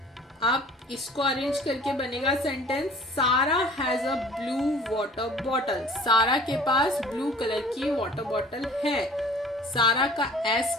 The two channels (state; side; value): normal; both; correlation 0.48